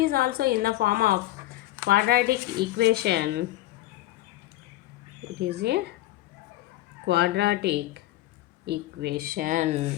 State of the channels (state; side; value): quieter; right; 15.9 dB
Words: is also in the form of quadratic equation. It is a quadratic equation.